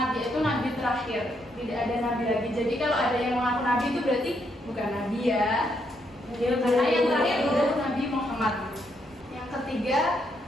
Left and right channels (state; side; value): normal; both; correlation 0.76